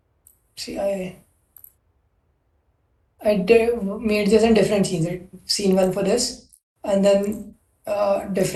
See, made this in different scenes. Right? Scene one for this, and then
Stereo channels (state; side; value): identical; both; correlation 1.00